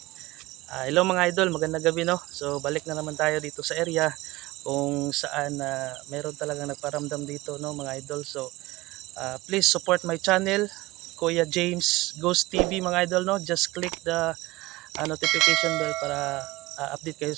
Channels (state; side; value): quieter; left; 20.0 dB